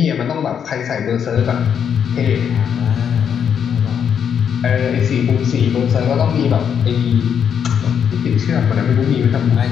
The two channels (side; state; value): right; quieter; 7.9 dB